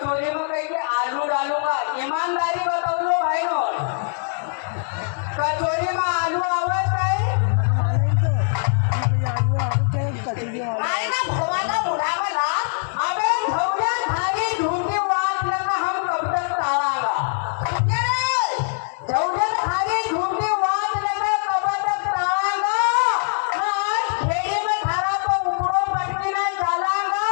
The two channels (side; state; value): right; silent; digital silence